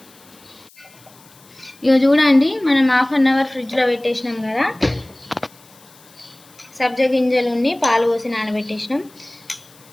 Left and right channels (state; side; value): noise; left; hiss, 26 dB below the sound